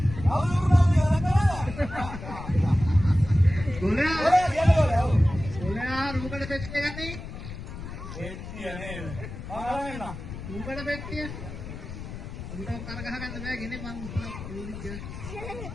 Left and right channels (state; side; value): noise; left; rumble, 10 dB below the sound